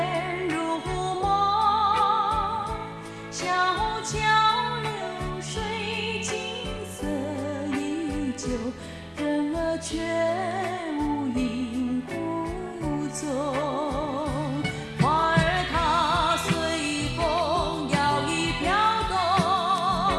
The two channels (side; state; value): both; identical; correlation 1.00